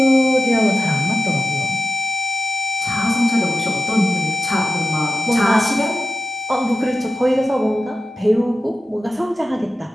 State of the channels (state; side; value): normal; both; correlation 0.91